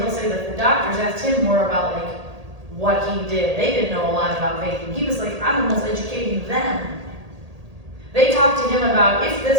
say that the doctors asked him more about like what he did. They didn't know a lot about vaping. He was like, I'm almost educating them. They talked to him about if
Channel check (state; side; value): late; left; 1.8 ms